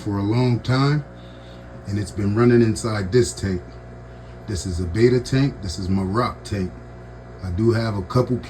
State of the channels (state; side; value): identical; both; correlation 1.00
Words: a long time, and it's been running inside this tank. This is a beta tank. This is my rock tank. I do have a couple